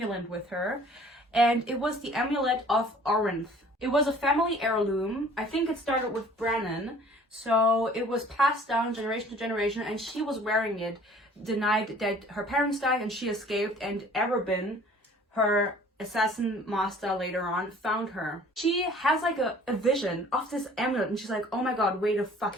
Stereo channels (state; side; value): normal; both; correlation 0.51